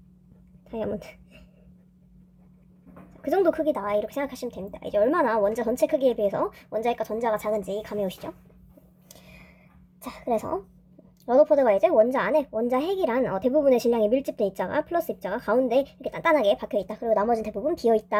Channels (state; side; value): identical; both; correlation 1.00